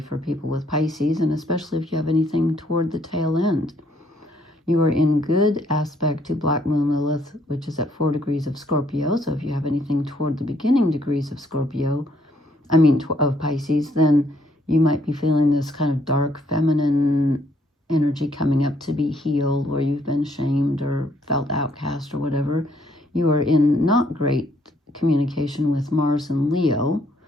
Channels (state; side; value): normal; both; correlation 0.69